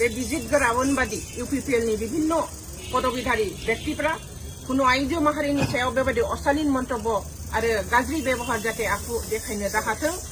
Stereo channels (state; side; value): identical; both; correlation 1.00